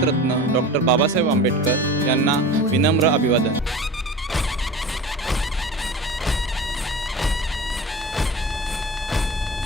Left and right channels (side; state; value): both; normal; correlation 0.35